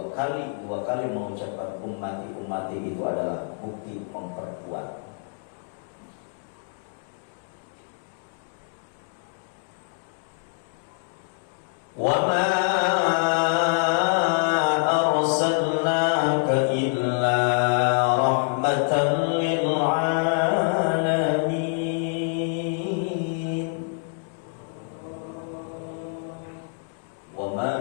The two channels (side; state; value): right; silent; digital silence